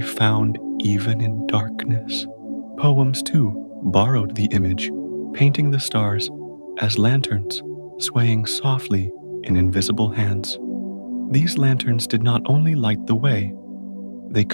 even in darkness. Poems, too, borrowed the image, painting the stars as lanterns swaying softly in invisible hands. These lanterns did not only light the way, they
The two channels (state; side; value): inverted; both; correlation -1.00